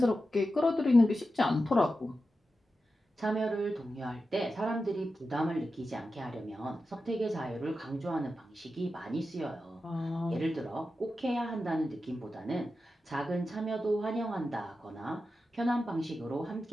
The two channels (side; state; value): both; normal; correlation 0.91